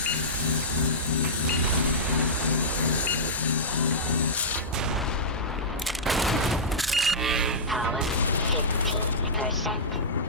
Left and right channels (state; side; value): normal; both; correlation -0.14